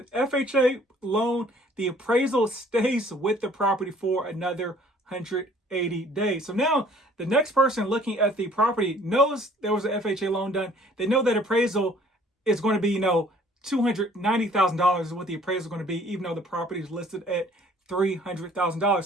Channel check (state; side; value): normal; both; correlation 0.57